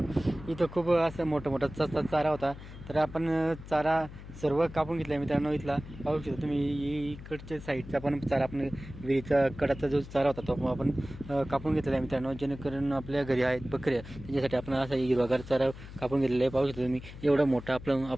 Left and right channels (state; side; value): noise; left; hum, 14 dB below the sound